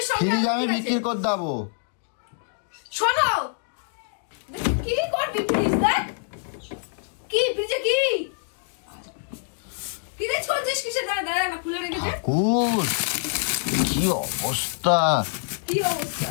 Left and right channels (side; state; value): right; silent; digital silence